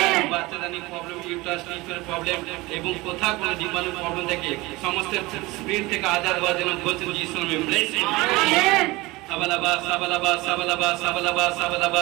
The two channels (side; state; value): left; quieter; 21.6 dB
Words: বাচ্চাদানি প্রবলেম ইউট্রাস লিভারের প্রবলেম এবং কোথাও কোনো জীবাণু প্রবলেম থেকে সমস্ত স্পিরিট থেকে আজাদ হওয়ার জন্য ঘোষণা যিশু নামে ব্লেস করি